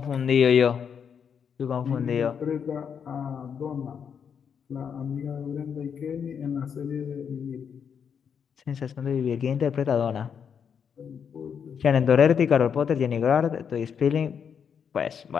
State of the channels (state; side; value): quieter; right; 7.2 dB